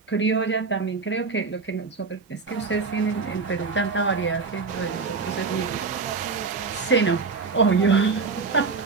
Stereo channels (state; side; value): quieter; left; 4.6 dB